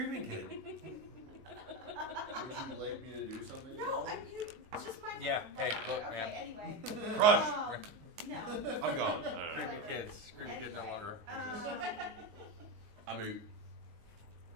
Kid. Would you like me to do something? No, it's just my. Yeah, hey, look, okay, man. Anyway. Crush! No. I'm gone. Creepy kids. Creepy kid no longer exists. I'm out.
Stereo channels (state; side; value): late; left; 19 ms